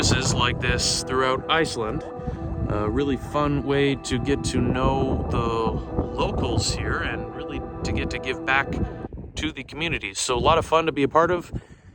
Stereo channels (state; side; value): identical; both; correlation 1.00